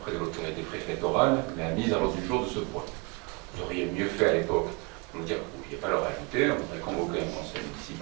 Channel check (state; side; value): quieter; left; 29.3 dB